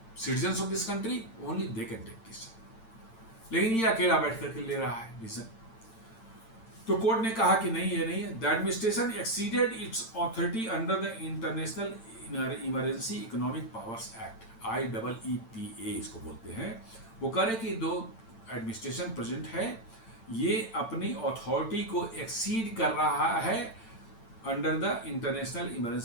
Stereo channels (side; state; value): right; late; 8.9 ms